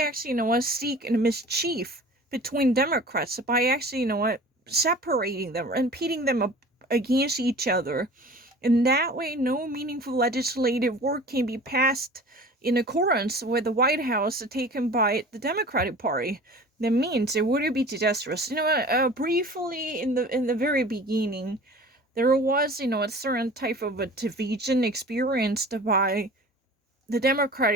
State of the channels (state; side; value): normal; both; correlation 0.42